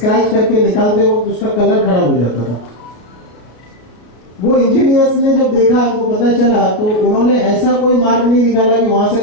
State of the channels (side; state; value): right; late; 32 ms